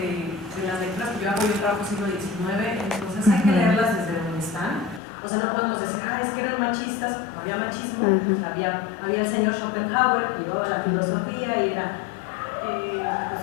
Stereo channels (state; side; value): drops out; right; at 5.0 s